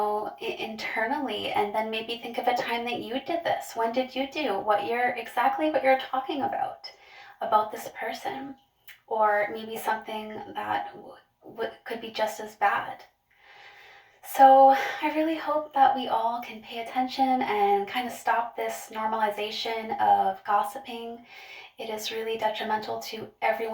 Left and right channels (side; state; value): both; identical; correlation 1.00